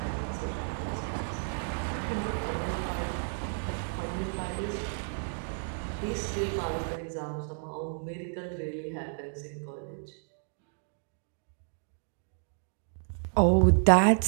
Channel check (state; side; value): silent; left; digital silence